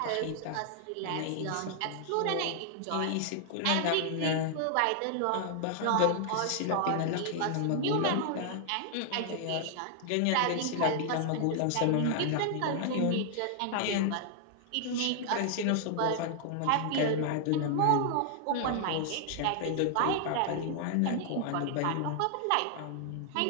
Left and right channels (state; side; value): different; both; correlation 0.00